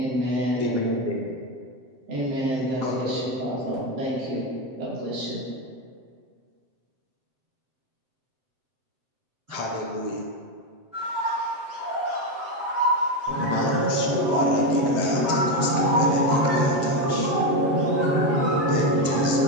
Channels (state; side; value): late; left; 7.7 ms